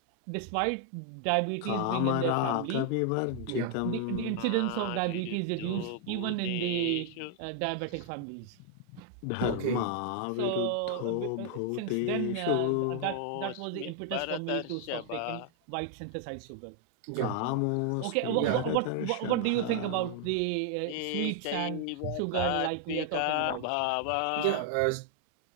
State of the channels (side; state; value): both; different; correlation 0.00